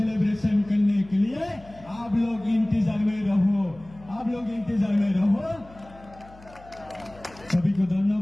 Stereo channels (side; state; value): left; noise; hum, 22 dB below the sound